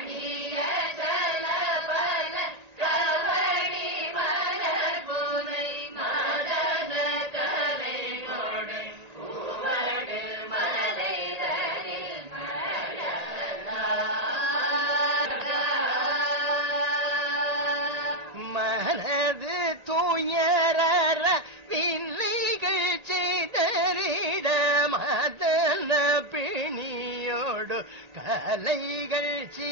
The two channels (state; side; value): late; left; 1.8 ms